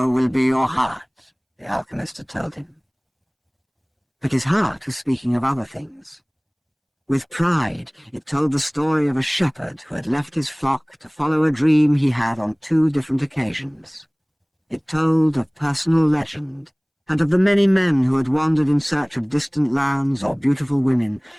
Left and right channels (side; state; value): both; identical; correlation 1.00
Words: will be your heart," the alchemist had told him. But his heart was speaking of other things. With pride, it told the story of a shepherd who had left his flock to follow a dream he had on 2 different occasions. It told of personal legend, and of the many men who had wandered in search of distant lands or beautiful women,